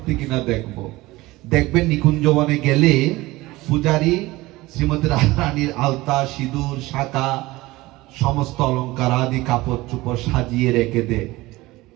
কিনা দেখব। দেখবেন নিকুঞ্জবনে গেলে পূজারী শ্রীমতী রাধারানীর আলতা, সিঁদুর, শাঁখা, সমস্ত অলঙ্কার আদি কাপড় চোপড় সাজিয়ে রেখে দেয়,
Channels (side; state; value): left; quieter; 19.7 dB